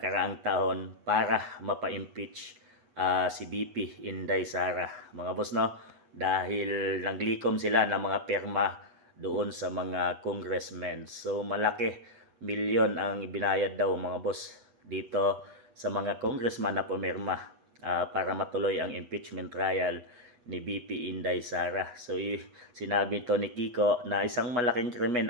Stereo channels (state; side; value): late; left; 8.2 ms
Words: taon para mapa-impeach si BP Inday Sara mga boss, no, dahil naglikom sila ng mga pirma doon sa mga congressmen. So malaki, milyon ang ibinayad daw mga boss dito sa mga congressman na pumirma para matuloy ang impeachment trial ni BP Inday Sara. So sinabi to ni Kiko na isang malaking